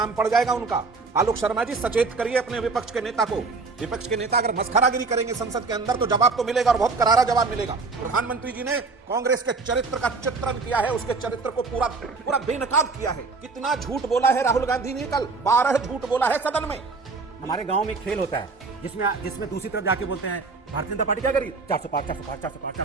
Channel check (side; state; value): left; quieter; 4.1 dB